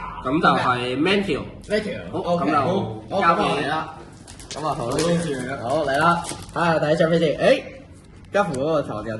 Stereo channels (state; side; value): identical; both; correlation 1.00